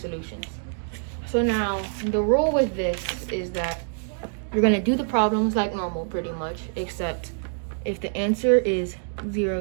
So now the rule with this is that you're going to do the problems like normal pretty much, except if the answer is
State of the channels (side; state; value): left; silent; digital silence